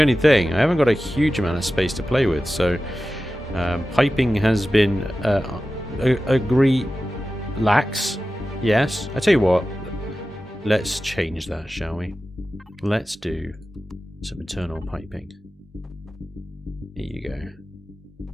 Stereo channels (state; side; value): normal; both; correlation 0.94